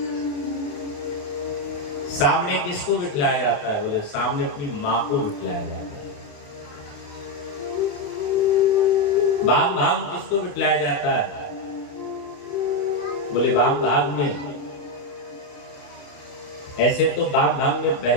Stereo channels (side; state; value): right; late; 28 ms